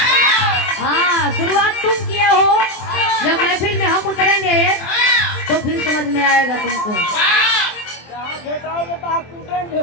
हाँ शुरुआत तुम किए हो, जब महफिल में हम उतरेंगे तो फिर समझ में आएगा तुमको।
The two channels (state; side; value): late; right; 24 ms